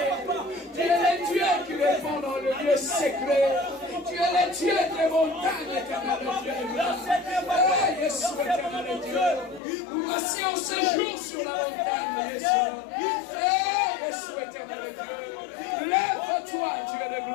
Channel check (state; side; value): drops out; right; at 9.6 s